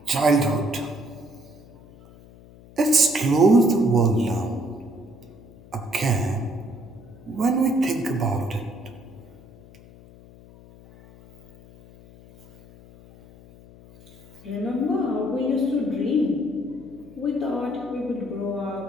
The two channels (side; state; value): left; noise; hum, 22 dB below the sound